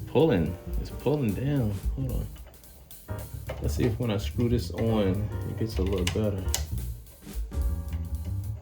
down. Hold on. Let's see if when I screw this on, it gets a little better.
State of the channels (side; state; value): both; identical; correlation 1.00